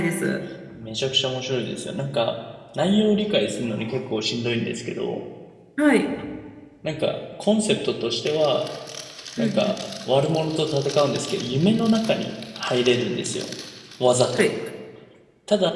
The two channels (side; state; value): both; identical; correlation 1.00